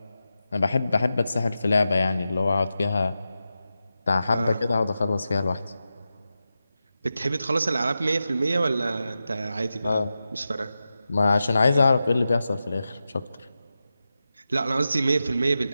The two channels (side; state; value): both; inverted; correlation -0.91